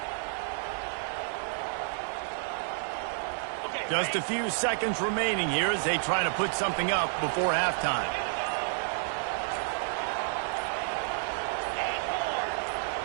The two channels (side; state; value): left; silent; 58 dB below the other